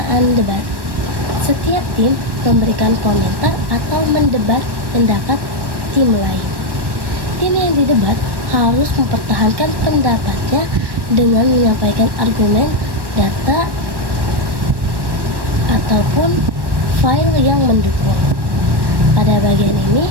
debat. Setiap tim memberikan komentar atau mendebat pendapat tim lain. Tim yang didebat harus mempertahankan pendapatnya dengan menyampaikan argumen, data, ataupun file yang mendukung. Pada bagian ini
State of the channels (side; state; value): left; late; 1.1 ms